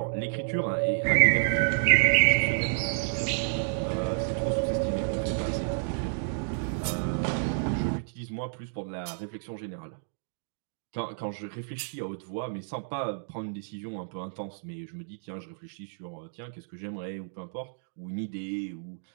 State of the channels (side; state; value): left; silent; digital silence